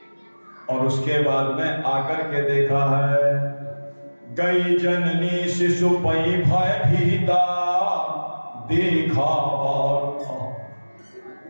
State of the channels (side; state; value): both; inverted; correlation -1.00